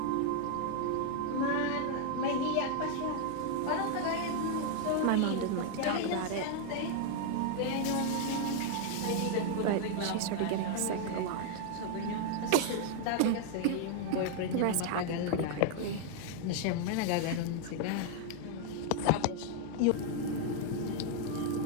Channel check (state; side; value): different; both; correlation 0.00